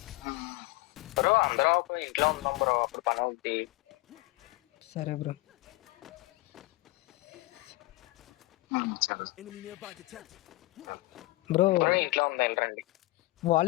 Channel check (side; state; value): right; quieter; 21.1 dB